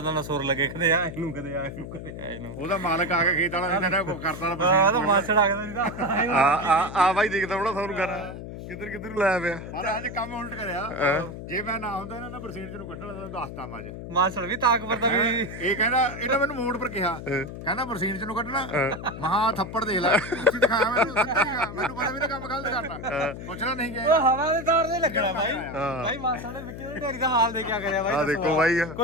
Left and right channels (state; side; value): noise; left; hum, 10 dB below the sound